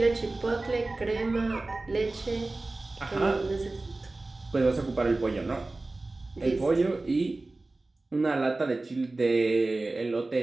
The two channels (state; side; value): quieter; left; 3.1 dB